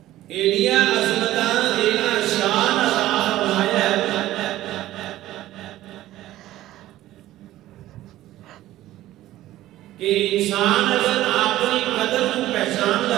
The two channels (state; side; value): quieter; left; 14.9 dB